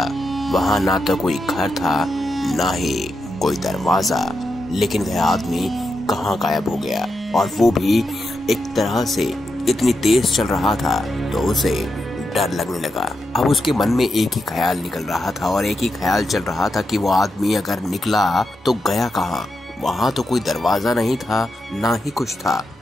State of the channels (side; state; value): both; normal; correlation 0.86